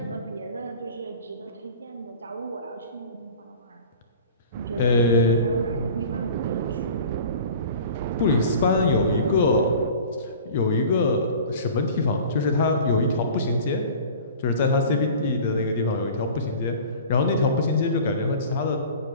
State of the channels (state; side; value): inverted; both; correlation -0.42